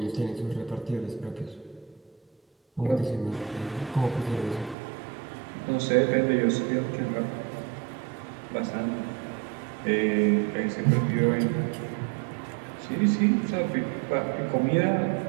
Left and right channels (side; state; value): left; drops out; at 4.8 s